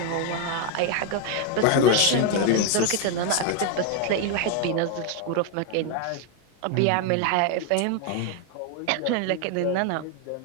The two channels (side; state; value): both; different; correlation 0.01